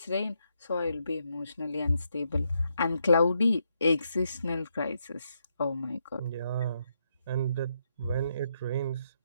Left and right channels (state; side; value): inverted; both; correlation -0.79